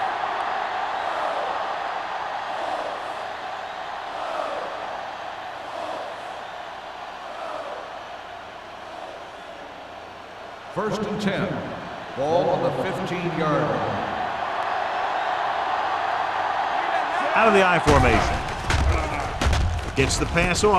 First and 10. Ball on the 15-yard line. Out of the I formation. Gets the pass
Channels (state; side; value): identical; both; correlation 1.00